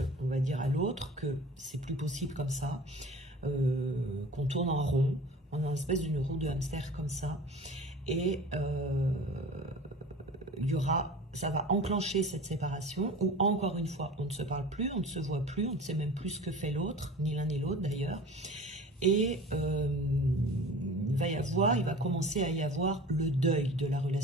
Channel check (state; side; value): normal; both; correlation 0.40